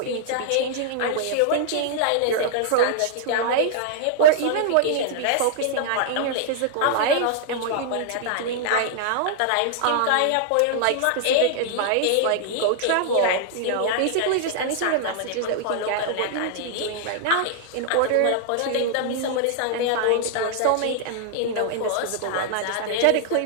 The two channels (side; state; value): both; different; correlation -0.01